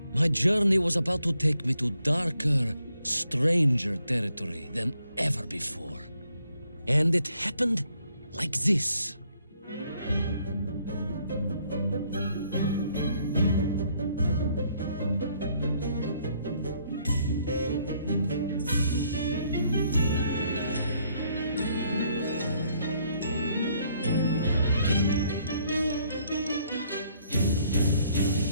my journey was about to take me to darker, stranger territory than ever before. And it happened like this.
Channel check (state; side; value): inverted; both; correlation -0.69